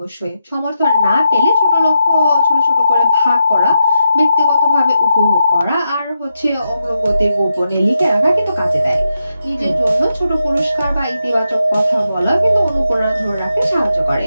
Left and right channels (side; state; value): both; inverted; correlation -0.85